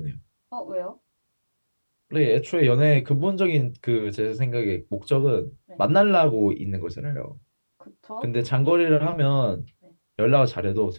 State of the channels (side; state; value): both; inverted; correlation -1.00